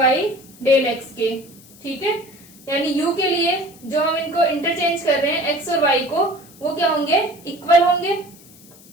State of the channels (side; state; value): left; noise; hiss, 23 dB below the sound